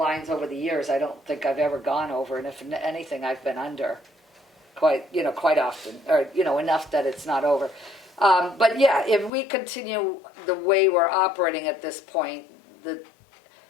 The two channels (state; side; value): drops out; right; at 9.3 s